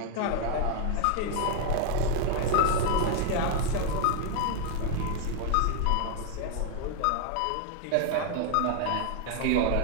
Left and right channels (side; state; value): both; different; correlation 0.01